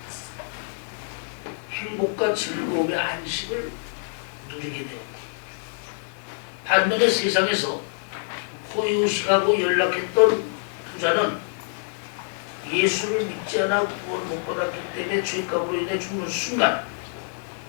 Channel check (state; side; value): silent; right; 55 dB below the other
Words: 행복과 즐거움의 안식을 누리게 되었고, 반면에 세상에서 호의호식하고 연락했던 부자는 예수를 믿지 않아 구원 못 받았기 때문에 죄값으로 인해 죽는 순간